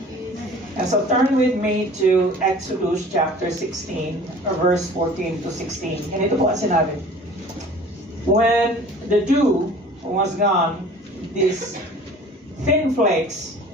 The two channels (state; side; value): normal; both; correlation 0.46